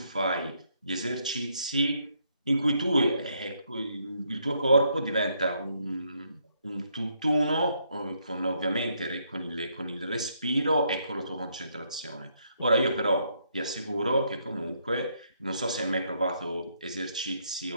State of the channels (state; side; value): inverted; both; correlation -0.73